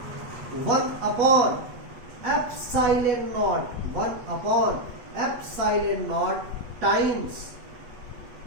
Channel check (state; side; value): late; left; 8.3 ms